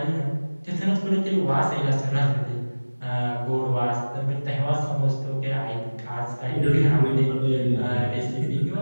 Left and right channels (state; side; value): inverted; both; correlation -1.00